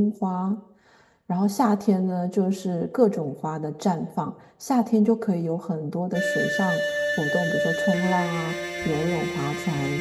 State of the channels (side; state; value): both; identical; correlation 1.00